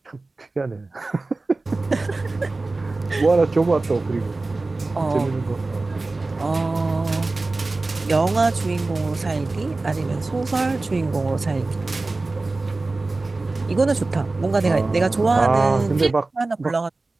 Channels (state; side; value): quieter; left; 3.3 dB